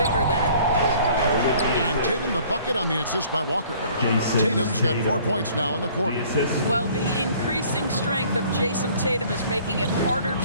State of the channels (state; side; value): inverted; both; correlation -0.54